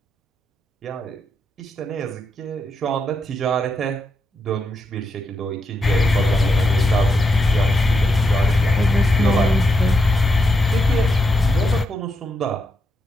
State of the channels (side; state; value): both; normal; correlation 0.82